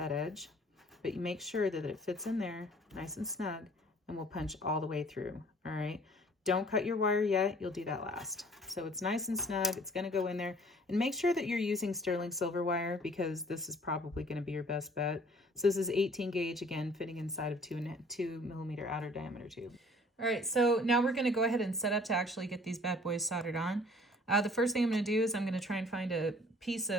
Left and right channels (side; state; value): both; normal; correlation 0.54